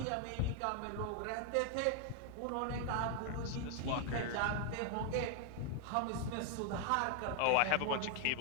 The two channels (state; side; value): different; both; correlation 0.00